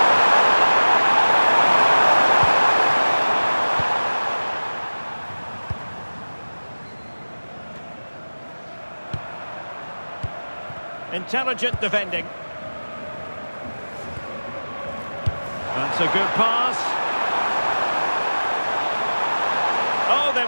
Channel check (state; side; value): inverted; both; correlation -1.00